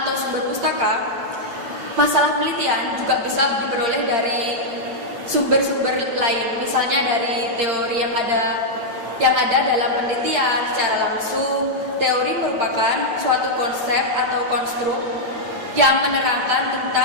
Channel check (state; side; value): late; left; 8.8 ms